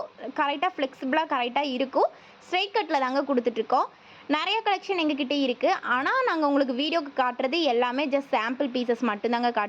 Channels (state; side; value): identical; both; correlation 1.00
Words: கரெக்டாக ஃப்ளெக்சிபிளாக கரெக்டாக இருக்கும். ஸ்ட்ரைட் கட்டில் தாங்க கொடுத்துட்ருக்கோம். நிறைய கலெக்ஷன் எங்ககிட்ட இருக்குது. ஆனால் நாங்கள் உங்களுக்கு வீடியோக்கு காட்டுறது எல்லாமே ஜஸ்ட் சாம்பிள் பீசஸ் மட்டும்தாங்க